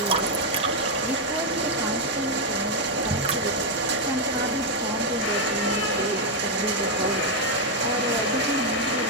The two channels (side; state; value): both; normal; correlation 0.01